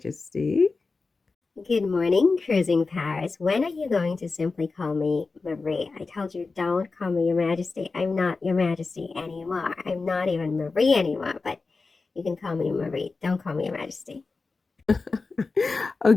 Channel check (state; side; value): quieter; right; 4.1 dB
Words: Good morning, Cruising Paris. When are you going to simply call me Marie? I told you don't call me Your Majesty. I'm not Your Majesty anymore. I'm not even Marie anymore, but you can call me Marie. Don't call me Your Majesty.